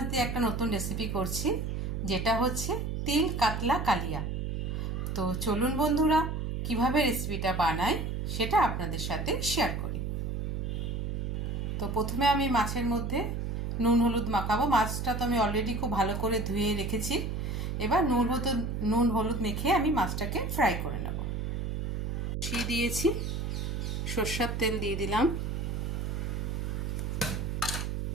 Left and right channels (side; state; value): right; noise; hum, 2 dB below the sound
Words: দিয়ে একটা নতুন রেসিপি করছি, যেটা হচ্ছে তিল কাতলা কালিয়া। তো চলুন বন্ধুরা, কিভাবে রেসিপিটা বানাই সেটা আপনাদের সাথে শেয়ার করি। তো প্রথমে আমি মাছের মধ্যে নুন হলুদ মাখাবো। মাছটা তো আমি অলরেডি খুব ভালো করে ধুয়ে রেখেছি। এবার নুন হলুদ মেখে আমি মাছটাকে ফ্রাই করে নেব। বসিয়ে দিয়েছি, সরষের তেল দিয়ে দিলাম।